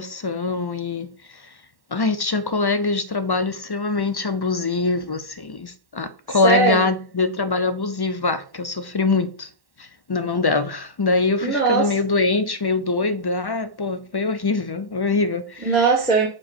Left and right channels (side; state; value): right; late; 1.1 ms